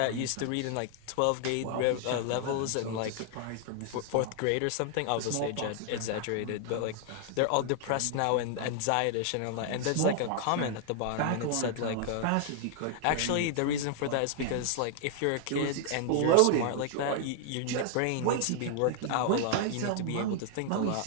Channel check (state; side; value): different; both; correlation 0.00